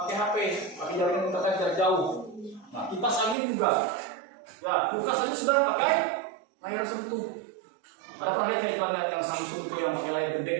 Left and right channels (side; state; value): left; drops out; at 3.4 s